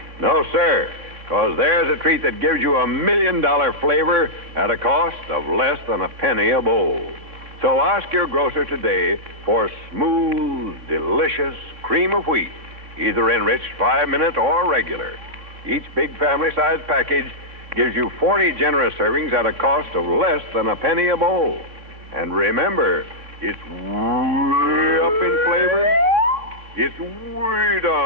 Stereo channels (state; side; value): late; left; 3.6 ms